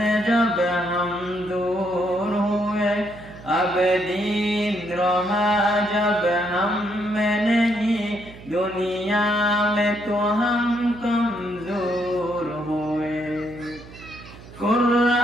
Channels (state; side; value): noise; right; hum, 18 dB below the sound